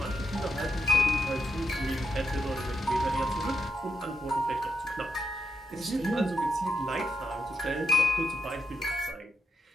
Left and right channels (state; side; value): normal; both; correlation 0.82